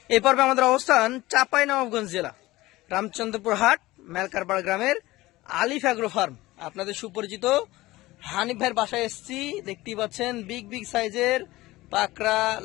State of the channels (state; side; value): quieter; right; 18.6 dB